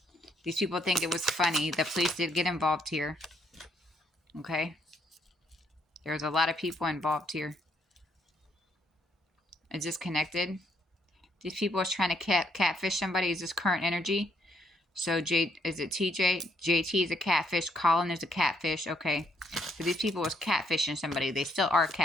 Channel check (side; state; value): both; normal; correlation 0.71